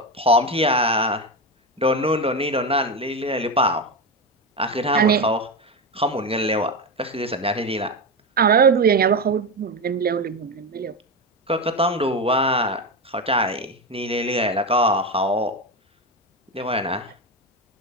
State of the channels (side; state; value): both; normal; correlation 0.15